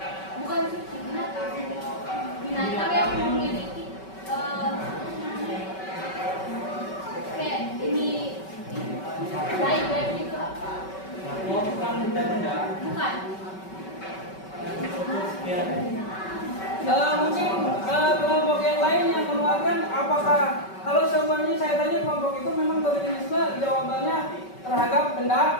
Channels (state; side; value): late; right; 5.3 ms